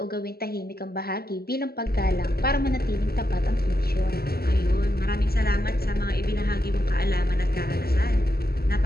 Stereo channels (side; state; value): right; late; 0.45 ms